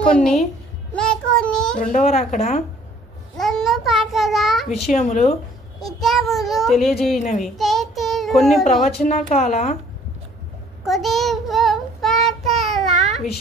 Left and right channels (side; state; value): both; normal; correlation 0.57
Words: రెండవ రాకడ విషయములు తెలియజేయనవి, కొన్ని ప్రవచన కాల